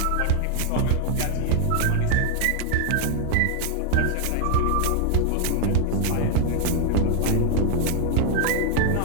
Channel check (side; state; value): both; different; correlation 0.00